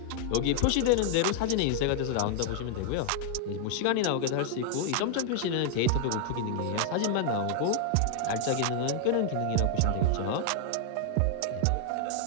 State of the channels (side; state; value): both; different; correlation 0.00